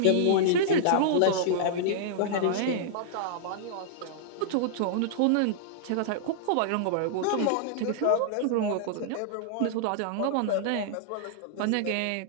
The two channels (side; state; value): both; different; correlation -0.02